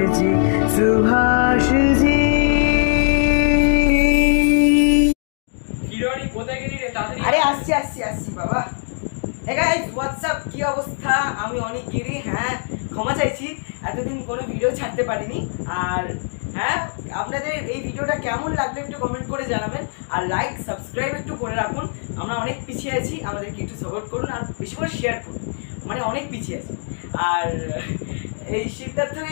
जी আরে আসছি বাবা। হে গাইস হোয়াটসঅ্যাপ, কি অবস্থা? আমি অনেক গিরি। হ্যাঁ, ক্ষমা চাইছি, এতদিন কোনো ভিডিও ছাড়তে পারিনি। আর হ্যাঁ, আপনাদের এই ভিডিওটা কেমন লাগলো একটু কমেন্ট করে জানাবেন, আর লাইক সাবস্ক্রাইব একটু করে রাখুন। আমরা অনেক পিছিয়ে আছি, আমাদেরকে একটু সাপোর্ট করুন, আর বেশি করে শেয়ার করুন, মানে অনেক পিছিয়ে আছি। আর এই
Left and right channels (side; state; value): right; silent; 65 dB below the other